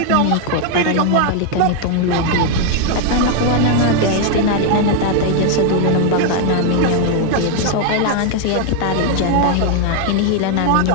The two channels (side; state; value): both; different; correlation 0.00